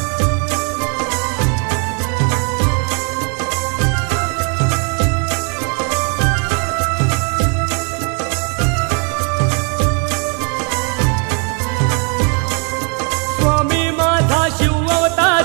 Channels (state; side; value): quieter; left; 37.1 dB